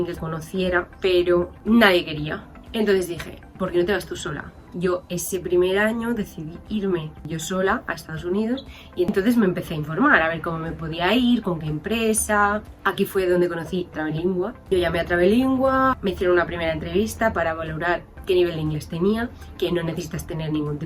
que conociera, pero nadie quería. Entonces dije, ¿por qué no te vas tú sola? Yo ese primer año decidí irme yo sola a Estados Unidos y entonces me empecé a informar, a ver cómo me podía ir, con qué empresa. Aquí fue donde conocí Travelingua. Yo llamé a Travelingua, me hicieron una primera entrevista para valorar qué nivel de inglés tenía, que no necesitas tener ningún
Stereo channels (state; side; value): identical; both; correlation 1.00